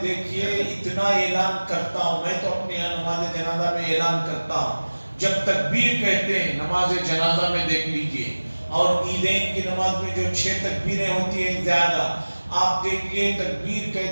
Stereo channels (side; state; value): both; inverted; correlation -1.00